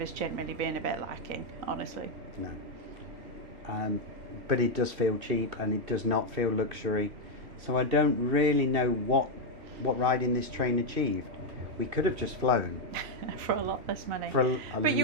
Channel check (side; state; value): left; late; 3.1 ms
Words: generally being a bit lacking, honestly. No. But it does feel cheap, and it does not feel luxury. So I don't really know what what riding this train achieved. We could have just flown for a lot less money. for a But